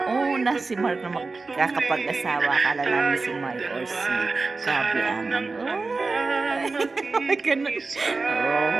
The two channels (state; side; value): quieter; left; 3.9 dB